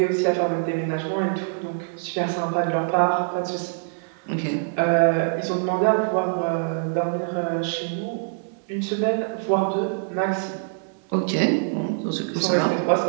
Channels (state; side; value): silent; left; 62 dB below the other